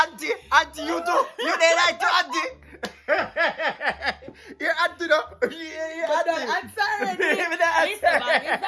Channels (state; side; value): identical; both; correlation 1.00